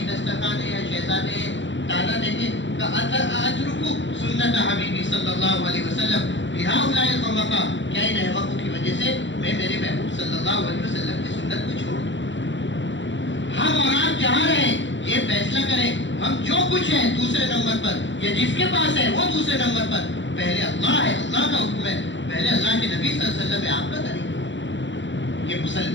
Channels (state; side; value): late; right; 0.54 ms